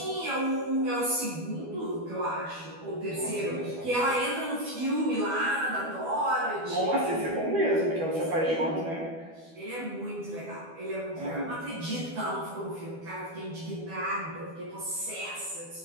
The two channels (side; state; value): left; late; 12 ms